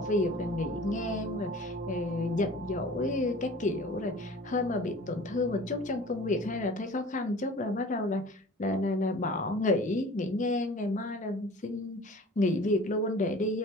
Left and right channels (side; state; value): both; normal; correlation 0.44